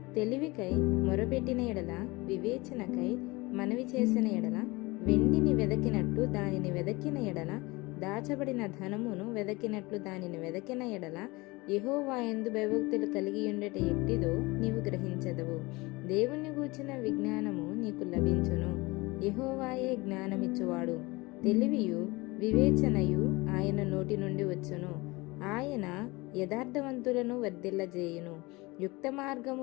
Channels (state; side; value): quieter; right; 23.3 dB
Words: తెలివికై మొరపెట్టిన ఎడల, వివేచనకై మనవి చేసిన ఎడల, వెండిని వెదకినట్టు దానిని వెదకిన ఎడల, దాచబడిన ధనమును వెదకినట్లు దానిని వెదకిన ఎడల, యెహోవా యందు భయభక్తులు కలిగి ఉండట ఎట్టిదో నీవు గ్రహించదవు. దేవుణ్ణి గూర్చిన విజ్ఞానము నీకు లభించును. యెహోవాయే జ్ఞానమిచ్చువాడు. తెలివియు వివేచనయు ఆయన నోటి నుండి వచ్చును. ఆయన యథార్థవంతులను వర్ధిల్లజేయును. యుక్త